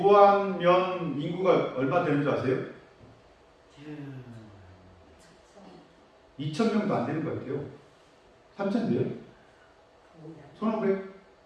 인구가 얼마 되는 줄 아세요? 2,000명도 안 되는 것 같아요. 3,000 돼요? 1,500?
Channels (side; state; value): both; identical; correlation 1.00